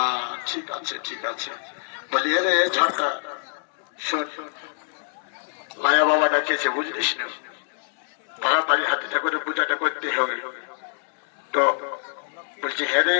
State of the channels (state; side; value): silent; right; digital silence